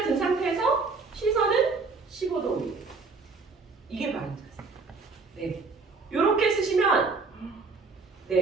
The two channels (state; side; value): quieter; left; 4.3 dB